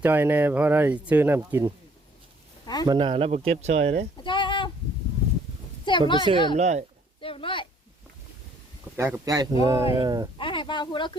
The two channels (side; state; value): both; normal; correlation 0.61